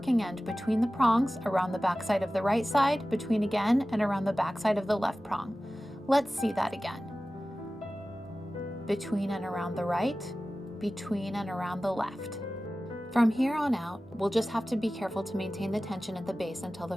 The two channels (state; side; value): normal; both; correlation 0.96